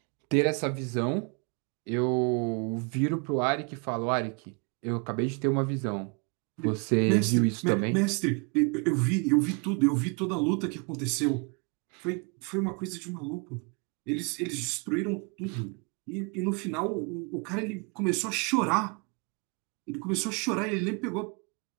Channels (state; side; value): quieter; left; 34.2 dB